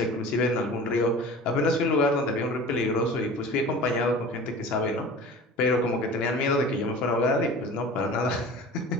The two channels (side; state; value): both; normal; correlation 0.39